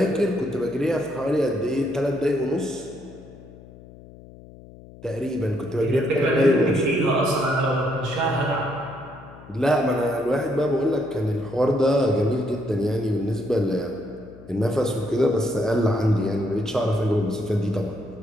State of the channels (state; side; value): noise; left; hum, 19 dB below the sound